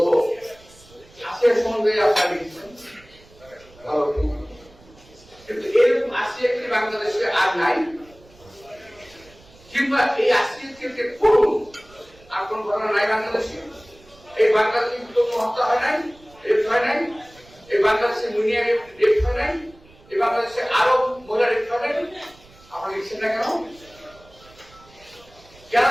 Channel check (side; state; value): right; noise; rumble, 26 dB below the sound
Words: আসিয়ার সম্বন্ধে আপনারা লিখেছেন ভালো, কিন্তু এরকম আসিয়া কি বাংলাদেশে আর নাই? কিংবা এই আসিয়াকে করুন আর কোন ঘটনা নাই বাংলাদেশে? এই বাংলাদেশে কোনো হত্যা হয় নাই, রেপ হয় নাই? এই বাংলাদেশে মুনিয়া রেপ হয় নাই? এই বাংলাদেশে আরো মহিলা রেপ হয় নাই? আপনারা লিখছেন না কেন? কেন